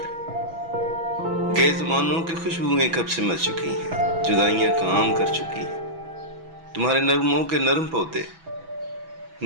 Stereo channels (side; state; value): left; late; 6.0 ms